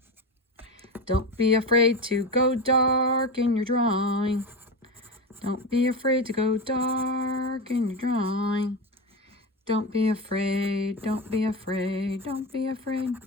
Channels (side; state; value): both; normal; correlation 0.20